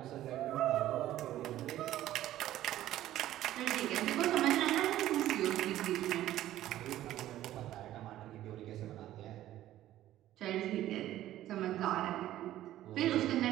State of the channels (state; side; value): quieter; left; 13.6 dB